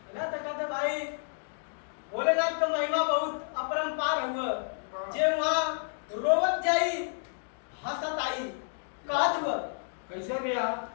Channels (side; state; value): right; silent; digital silence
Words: ना? तो कहते भाई भोलेनाथ का महिमा बहुत अपरंपार हुआ, जे वहां रोवत जाई हंसत आई। कहत हुआ कैसे भैया?